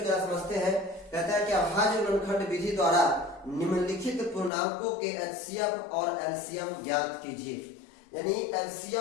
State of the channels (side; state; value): right; drops out; at 4.5 s